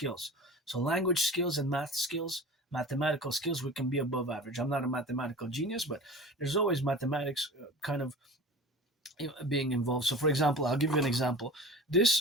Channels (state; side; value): normal; both; correlation 0.37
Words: So language skills and math skills, mathematical skills, we can be above average. I'm not a mathematical genius, but there's always mathematics kind of being involved. So, for example, I'll give you an example.